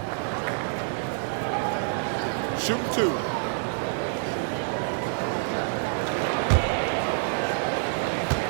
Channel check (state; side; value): silent; left; 60 dB below the other